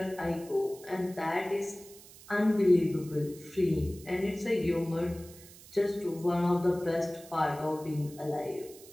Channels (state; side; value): noise; right; hiss, 20 dB below the sound